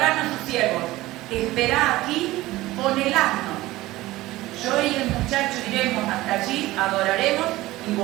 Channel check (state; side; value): quieter; left; 17.9 dB